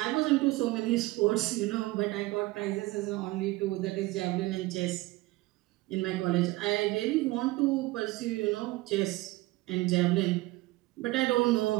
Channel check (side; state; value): left; quieter; 19.7 dB